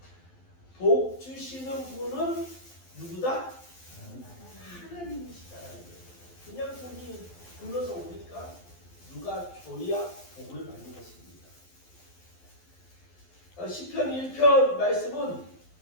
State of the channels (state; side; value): late; right; 12 ms